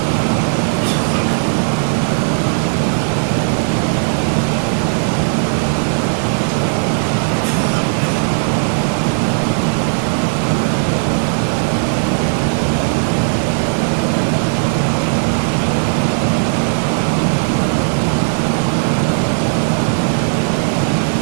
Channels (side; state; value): left; silent; digital silence